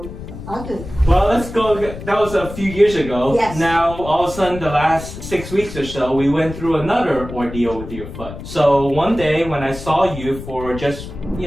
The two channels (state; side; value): noise; left; rumble, 11 dB below the sound